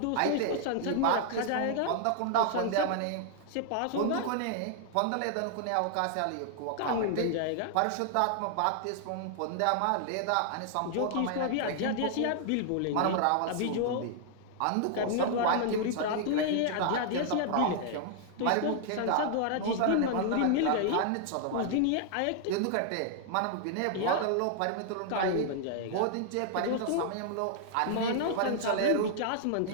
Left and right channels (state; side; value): different; both; correlation 0.00